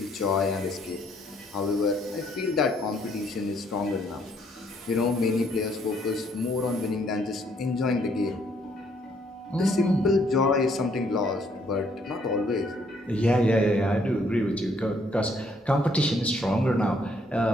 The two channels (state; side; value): normal; both; correlation 0.68